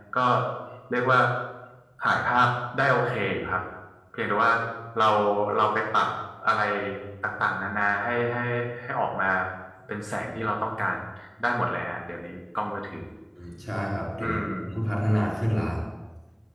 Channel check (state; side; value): identical; both; correlation 1.00